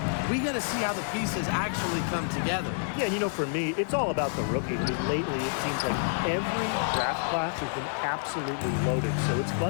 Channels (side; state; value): right; silent; 59 dB below the other